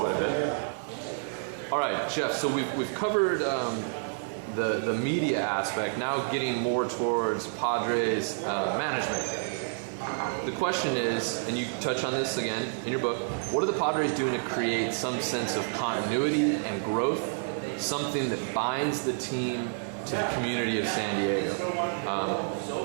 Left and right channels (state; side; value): silent; left; 58 dB below the other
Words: a bit. All right, Geoff, so we've covered the media aspect, now getting more towards Padres management. The question is, and you touch on this again in your book, what are the Padres doing to create some sense of continuity and growth, something that binds the team to the community of San Diego?